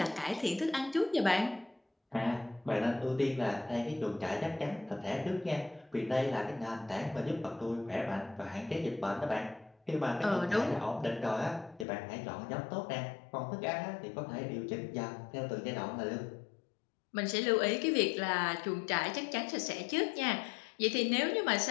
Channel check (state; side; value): drops out; right; at 11.9 s